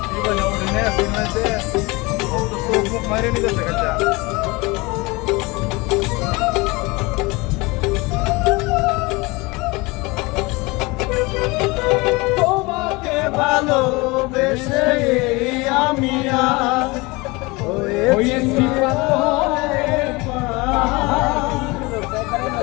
মারে নিতে দেখা তোমাকে ভালোবেসে আমি হয়েছি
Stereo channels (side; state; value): right; quieter; 24.4 dB